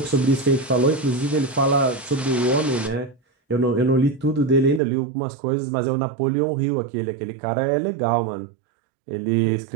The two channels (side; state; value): left; drops out; at 4.8 s